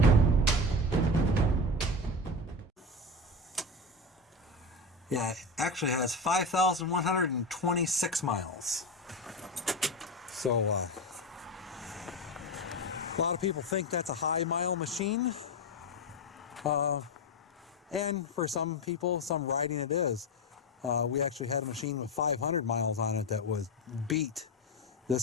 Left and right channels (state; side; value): normal; both; correlation 0.19